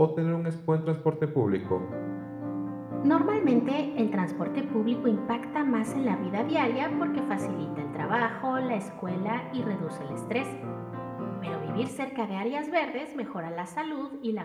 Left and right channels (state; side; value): identical; both; correlation 1.00